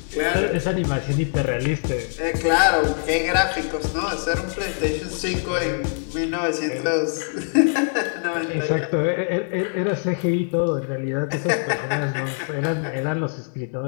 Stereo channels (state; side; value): silent; right; digital silence